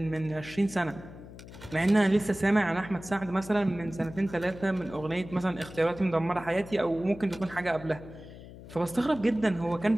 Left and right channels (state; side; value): noise; left; hum, 16 dB below the sound